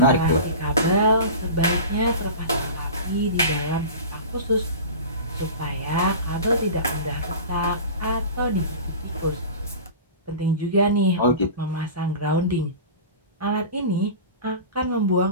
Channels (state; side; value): inverted; both; correlation -0.34